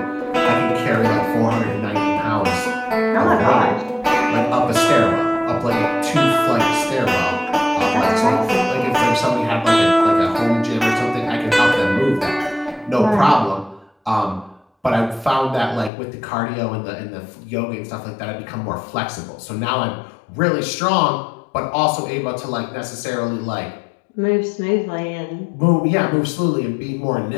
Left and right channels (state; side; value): drops out; right; at 15.9 s